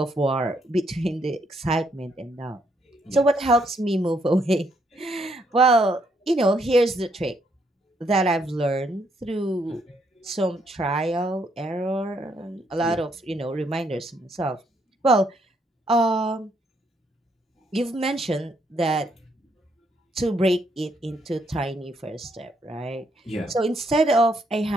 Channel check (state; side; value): normal; both; correlation 0.73